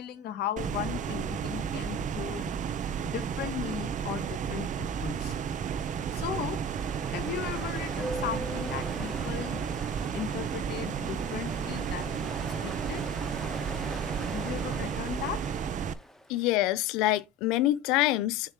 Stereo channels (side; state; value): both; normal; correlation 0.36